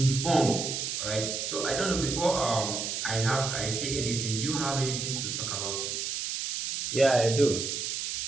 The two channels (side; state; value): right; noise; hiss, 3 dB below the sound